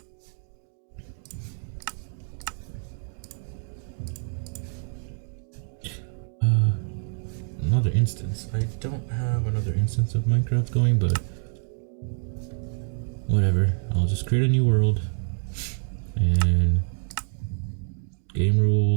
Another instance. I don't have another instance of Minecraft going, but whatever. I'll just create a new world and game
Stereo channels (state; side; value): silent; left; 61 dB below the other